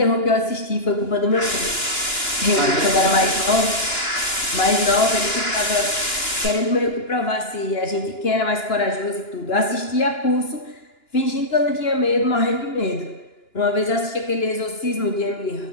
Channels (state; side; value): late; right; 2.9 ms